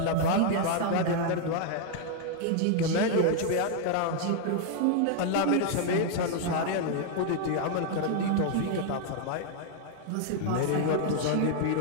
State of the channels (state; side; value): different; both; correlation 0.00